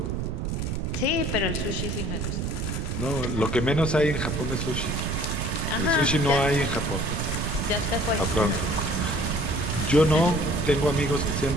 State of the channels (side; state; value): right; noise; rumble, 2 dB below the sound